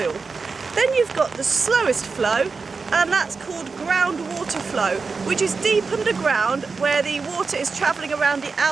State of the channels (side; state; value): left; quieter; 4.6 dB